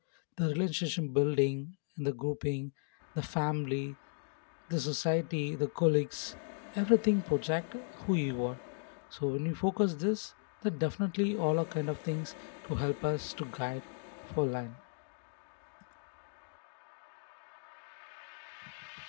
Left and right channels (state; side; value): silent; right; digital silence